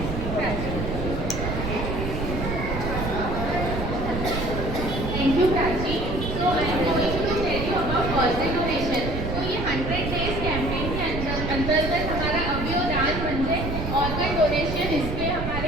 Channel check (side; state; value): right; noise; rumble, 4 dB below the sound